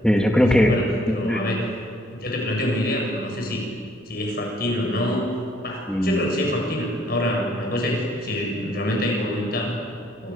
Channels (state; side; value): normal; both; correlation 0.66